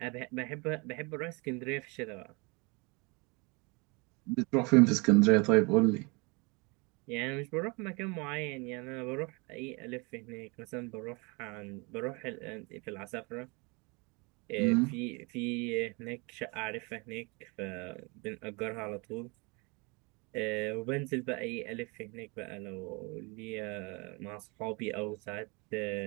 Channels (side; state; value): left; quieter; 29.4 dB